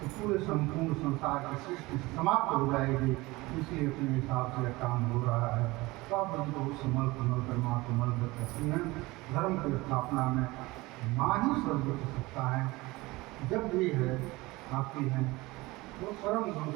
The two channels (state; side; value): quieter; left; 21.4 dB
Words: तो पूरे संपूर्ण संसार की सृष्टि समाप्त हो जाएगी। इसलिए अपने हिसाब से काम हो रहा है। तो आप हमको समल कर माँ कमल करती हैं। धर्म की स्थापना में माँ ही सर्वोच्च सत्ता है, जब भी है आती हैं वो परम गुरु